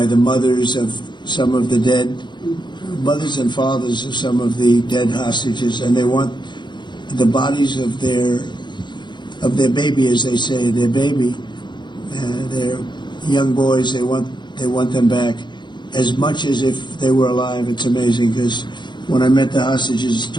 the mothers of some of the dead, mothers and fathers of some of the dead hostages, and they want the bodies of their baby, as they say, their baby, their young boys. They want them back as much as if they were alive. It's amazing because when I met the hostages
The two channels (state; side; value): late; right; 0.22 ms